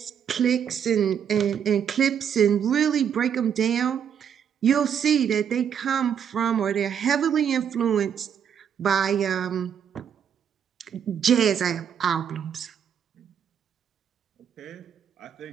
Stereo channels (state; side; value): quieter; left; 8.2 dB